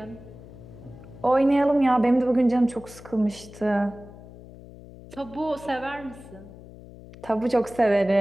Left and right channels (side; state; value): left; noise; hum, 18 dB below the sound